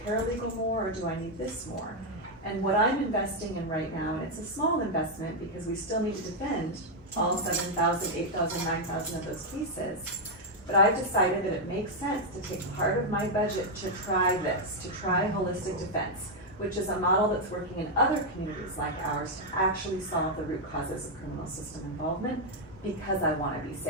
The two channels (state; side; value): normal; both; correlation 0.00